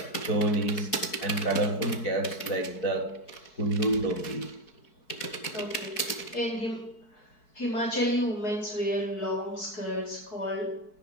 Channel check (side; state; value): right; late; 4.6 ms